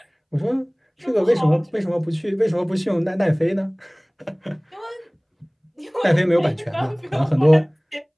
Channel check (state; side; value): identical; both; correlation 1.00